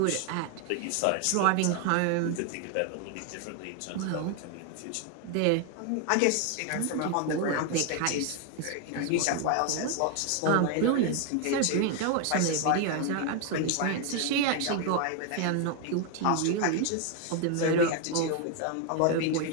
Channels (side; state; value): both; different; correlation 0.01